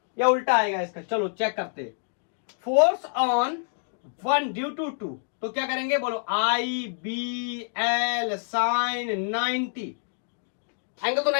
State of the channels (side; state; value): right; silent; digital silence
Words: या उल्टा आएगा इसका। चलो चेक करते। फोर्स ऑन 1 ड्यू टू 2, तो क्या करेंगे, बोलो आई बी एल साइन 90, एंगल तो